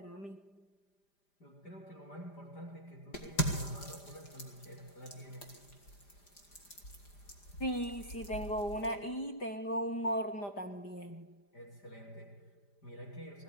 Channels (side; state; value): right; late; 5.0 ms